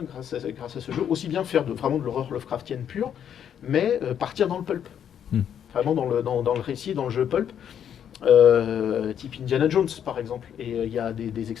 grâce à ce jeu aussi bien faire vraiment de l'horreur Lovecraftienne pure, mais partir dans le pulp, vraiment dans le récit, dans le jeu pulp. Type Indiana Jones par exemple, et il y a des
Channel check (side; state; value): right; quieter; 9.1 dB